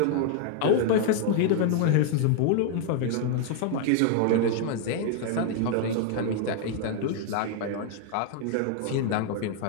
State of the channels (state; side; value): different; both; correlation -0.01